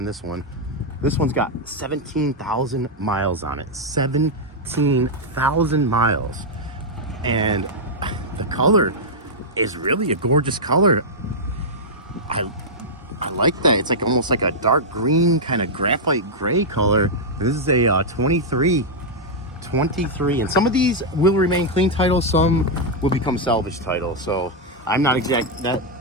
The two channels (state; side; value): normal; both; correlation -0.05